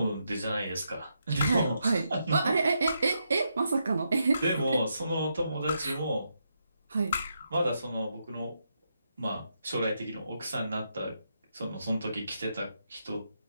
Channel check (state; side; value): inverted; both; correlation -0.82